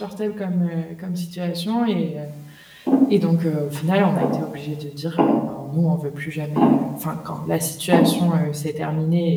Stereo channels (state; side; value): identical; both; correlation 1.00